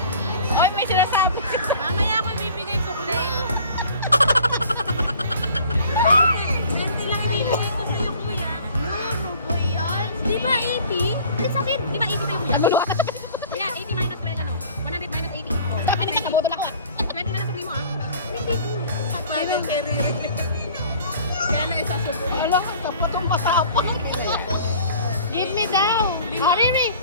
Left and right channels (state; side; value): inverted; both; correlation -0.48